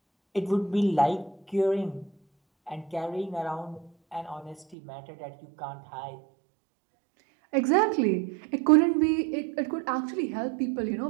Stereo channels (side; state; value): left; drops out; at 4.8 s